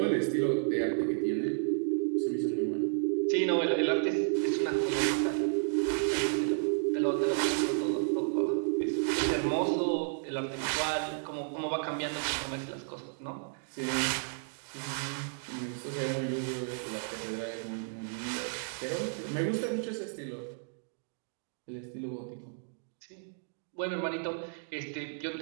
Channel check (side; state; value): left; silent; digital silence